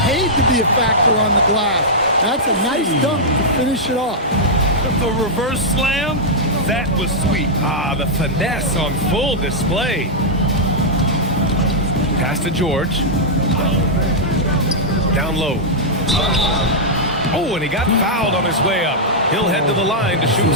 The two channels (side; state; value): both; normal; correlation -0.07